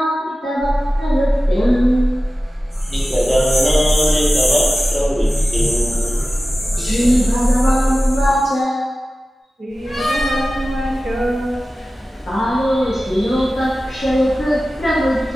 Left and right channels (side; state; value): both; normal; correlation 0.95